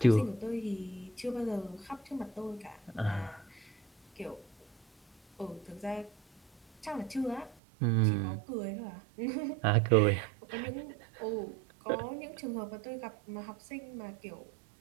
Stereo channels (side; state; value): left; drops out; at 7.6 s